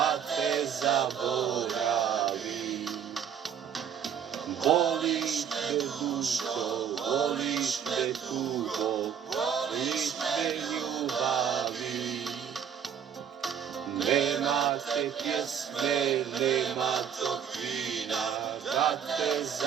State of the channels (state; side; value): quieter; left; 8.0 dB